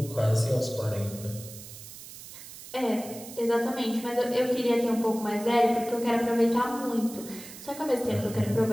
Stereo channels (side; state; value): right; noise; hiss, 15 dB below the sound